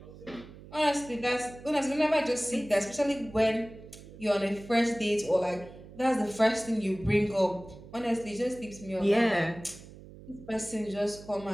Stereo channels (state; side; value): noise; right; hum, 18 dB below the sound